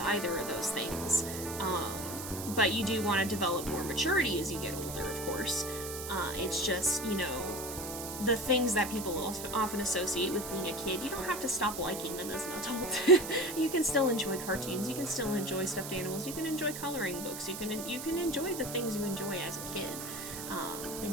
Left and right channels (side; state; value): right; noise; hiss, 8 dB below the sound